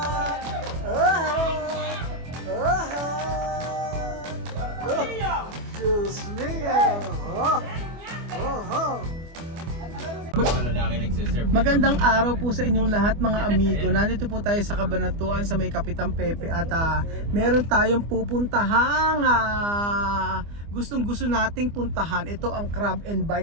Diyos mio. Magandang araw po sa inyong lahat mga amigo. Nandito po tayo sa Cabanatuan sa may Kapitan Pepe at meron tayong pupuntahang gustong gusto nating puntahan. Ito ang Crab and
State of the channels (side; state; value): left; late; 24 ms